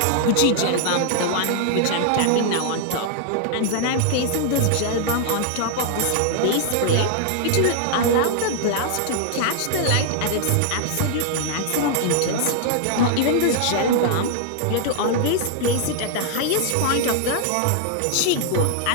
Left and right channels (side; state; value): both; different; correlation 0.00